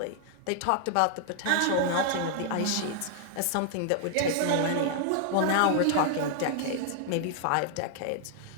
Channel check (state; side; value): different; both; correlation 0.00